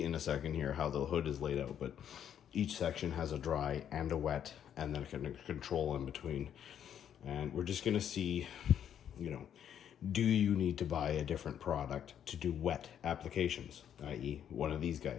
in a second here how the hood is laid out, but each section has a dry and a wet, and then a control in between. And we're just going to see, do you need to buy a different product to do wet applications, i.e. one of these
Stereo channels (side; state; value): right; quieter; 9.4 dB